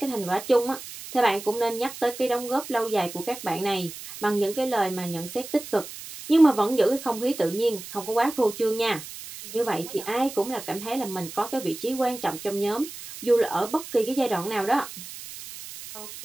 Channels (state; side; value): noise; right; hiss, 12 dB below the sound